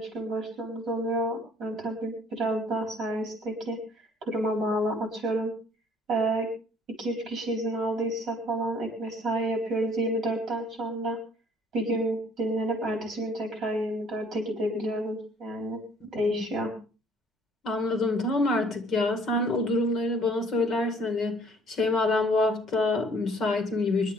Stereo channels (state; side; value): normal; both; correlation 0.58